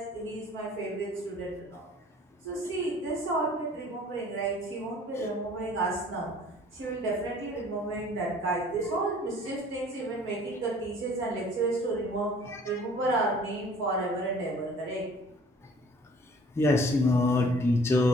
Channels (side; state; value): both; normal; correlation 0.52